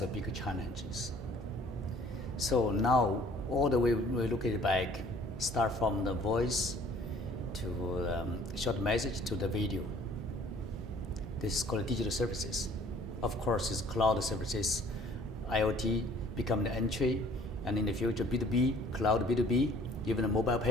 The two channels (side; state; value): both; normal; correlation 0.55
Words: a big challenges. So now all the way we look at it back, start from the voice to short message to the video. This is called digital services. Of course, it's cloud services. IoT become the entry, and in the future B2B, cloud B2B, even the mobile